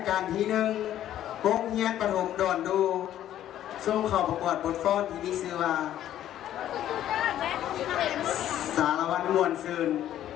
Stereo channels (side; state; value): right; quieter; 11.9 dB